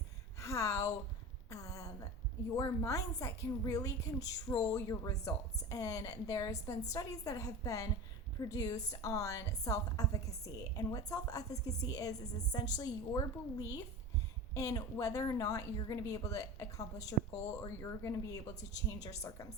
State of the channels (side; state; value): both; normal; correlation 0.31